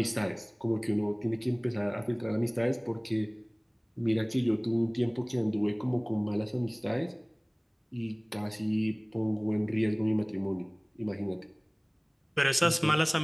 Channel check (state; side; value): identical; both; correlation 1.00